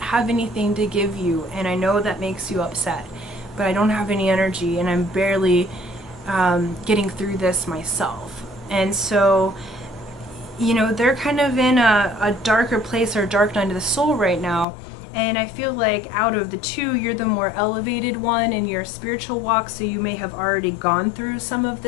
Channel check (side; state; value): right; drops out; at 14.7 s